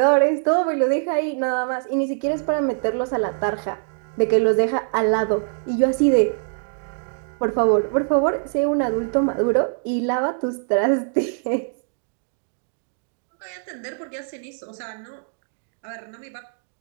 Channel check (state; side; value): silent; left; digital silence